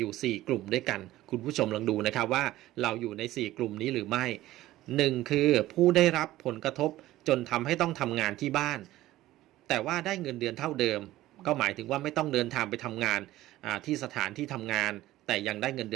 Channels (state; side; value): quieter; left; 15.7 dB